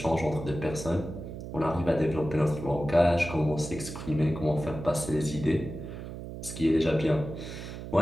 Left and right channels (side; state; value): right; noise; hum, 9 dB below the sound